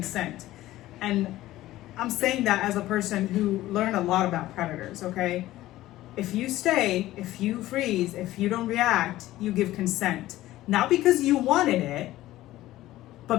And I'm saying that as a person who learned a lot about predators, okay? If you stay, if you freeze, if you don't react, you give consent. Not because you wanted it, but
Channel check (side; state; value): right; quieter; 15.6 dB